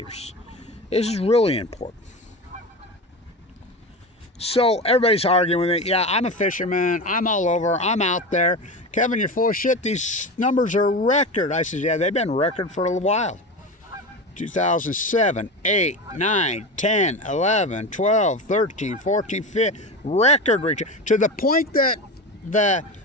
This is really important. So everybody's arguing with it. Yeah, I'm a fisherman. I'm all over. I'm out there. Kevin, you're full of shit. These numbers are record. I said, yeah, they've been record for a while. 2007, 8, 9, 10, 11, 12, 13, 14, 15, record reach. To the point that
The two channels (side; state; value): both; normal; correlation 0.25